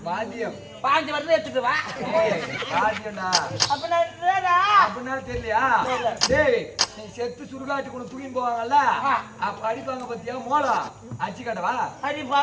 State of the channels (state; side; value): identical; both; correlation 1.00